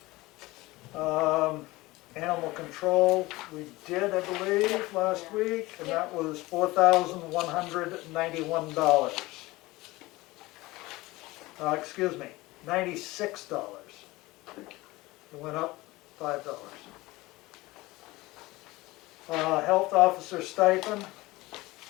Animal control, we did, I believe, last week, and that was $4,191. Excuse me, $96. It went up $5. Health officer stipend,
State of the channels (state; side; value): quieter; right; 20.2 dB